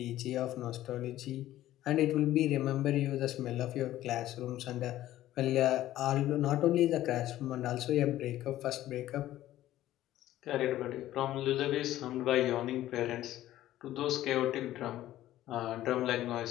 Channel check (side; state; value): right; quieter; 14.1 dB